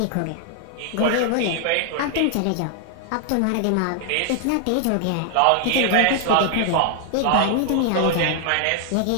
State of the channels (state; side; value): different; both; correlation 0.00